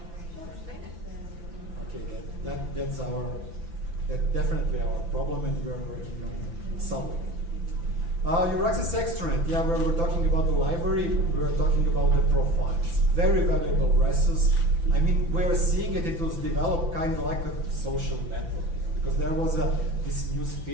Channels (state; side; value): late; left; 5.9 ms